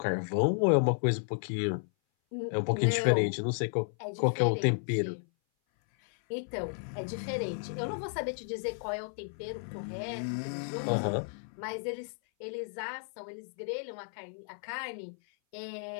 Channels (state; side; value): silent; right; 56 dB below the other